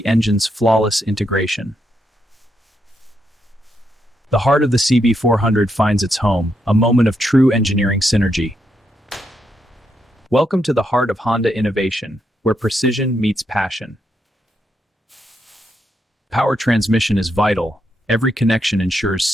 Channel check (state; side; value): normal; both; correlation 0.80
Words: engine's flawless integration. The heart of the CB400 finds its home, a moment of true engineering synergy. Welcome to the heart of Honda innovation, where precision meets passion. Power transmission is vital. Every connection ensures